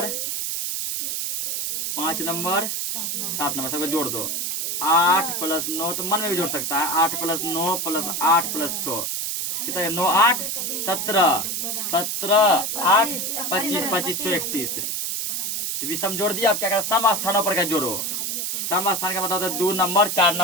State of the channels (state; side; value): noise; right; hiss, 1 dB below the sound